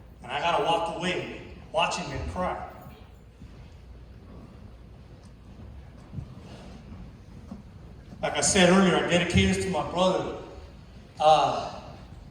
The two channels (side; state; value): both; identical; correlation 1.00